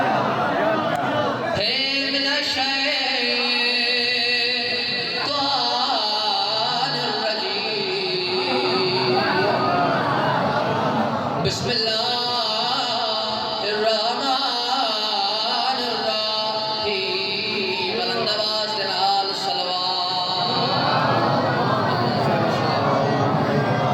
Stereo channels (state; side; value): identical; both; correlation 1.00